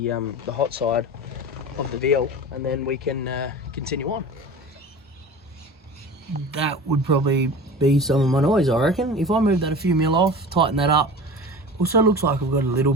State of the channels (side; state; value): both; normal; correlation 0.36